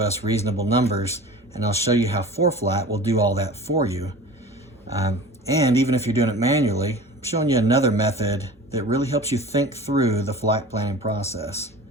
reasonable numbers, and I'll show you how ForeFlight will do all that for you. And even if you're doing it manually, I'm showing you another method that really helps you think through the flight planning process.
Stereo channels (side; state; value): both; normal; correlation 0.39